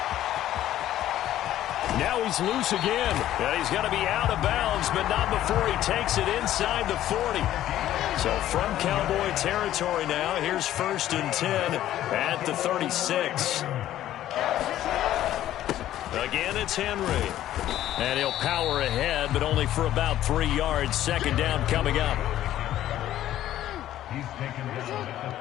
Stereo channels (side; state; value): right; quieter; 12.9 dB